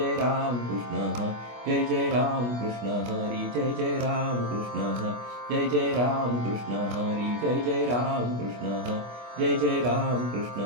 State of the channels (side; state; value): left; late; 25 ms